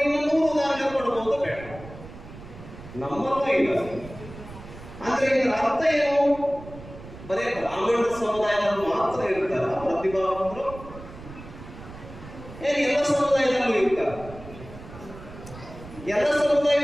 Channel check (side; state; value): right; noise; rumble, 15 dB below the sound